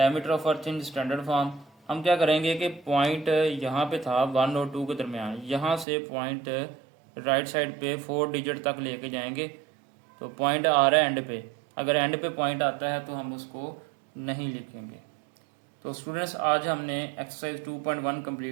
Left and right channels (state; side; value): drops out; left; at 5.9 s